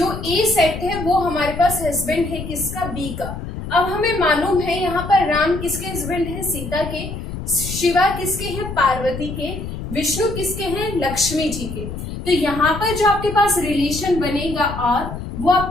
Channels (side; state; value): left; noise; rumble, 8 dB below the sound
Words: ए सेट है वो हमारे पास हस्बैंड है किसका, बी का। अब हमें मालूम है यहाँ पर राम किसके हस्बैंड है, सीता के। शिवा किसके हैं, पार्वती के। विष्णु किसके हैं, लक्ष्मी जी के। तो यहाँ पर जो आपके पास रिलेशन बनेगा और वो